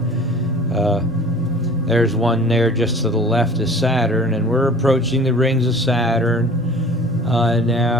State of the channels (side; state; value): both; normal; correlation 0.45